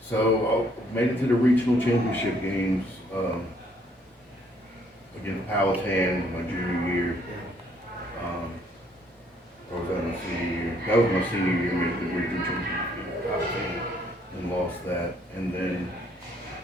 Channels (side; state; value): both; normal; correlation 0.66